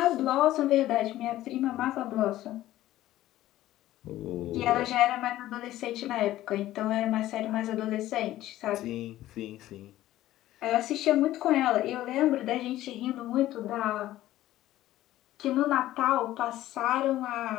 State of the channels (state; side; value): quieter; right; 14.6 dB